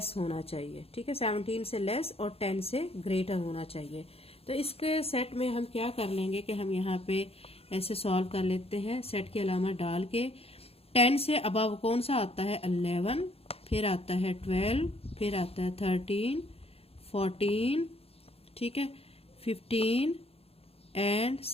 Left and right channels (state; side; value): late; right; 0.28 ms